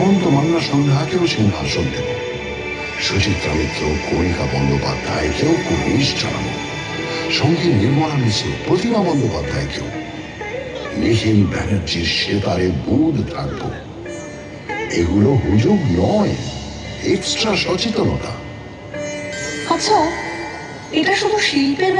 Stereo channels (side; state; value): both; identical; correlation 1.00